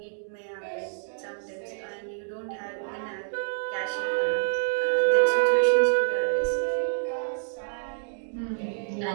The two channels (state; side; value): silent; left; digital silence